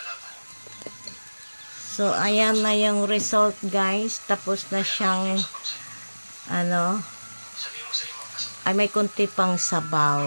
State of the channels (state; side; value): inverted; both; correlation -1.00